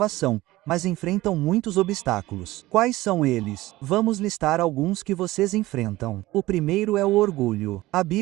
mas enfrentam muitos obstáculos. Quais são eles? Vamos listar alguns que vocês enfrentam. O primeiro é o orgulho. A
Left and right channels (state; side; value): quieter; left; 17.9 dB